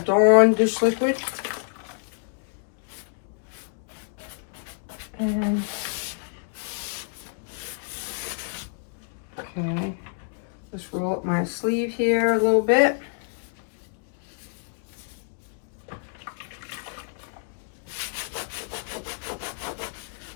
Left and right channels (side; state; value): right; silent; 60 dB below the other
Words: dish liquid. And okay, let's roll up my sleeve here a little bit.